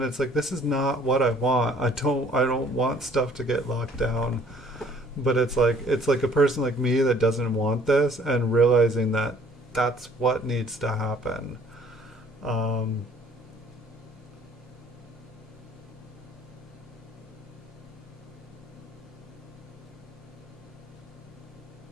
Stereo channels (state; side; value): normal; both; correlation 0.57